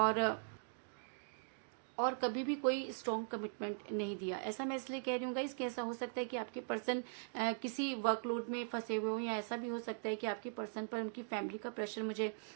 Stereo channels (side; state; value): left; silent; digital silence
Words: और कभी भी कोई स्ट्रॉन्ग कमिटमेंट नहीं दिया। ऐसा मैं इसलिए कह रही हूँ गाइस कि ऐसा हो सकता है कि आपके पर्सन किसी वर्कलोड में फंसे हुए हो, या ऐसा भी हो सकता है कि आपके पर्सन पर उनकी फैमिली का प्रेशर मुझे